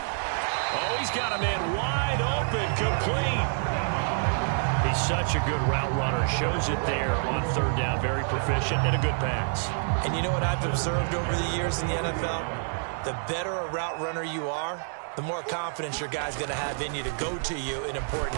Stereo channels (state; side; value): silent; left; 60 dB below the other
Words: Oh, he's got a man wide open, complete. He's such a good route runner. Shows it there on third down. Very proficient and a good pass. And you know what I've observed over the years in the NFL? The better a route runner you are, the more confidence your guy's going to have in you to go to you in